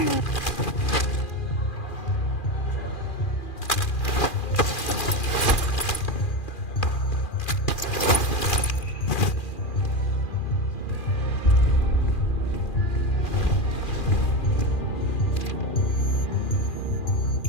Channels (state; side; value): late; right; 2.4 ms